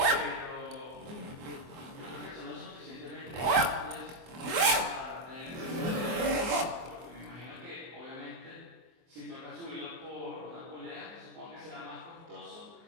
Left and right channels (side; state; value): left; late; 24 ms